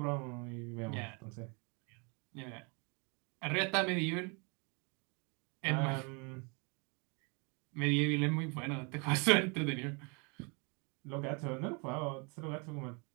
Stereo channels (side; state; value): left; quieter; 32.9 dB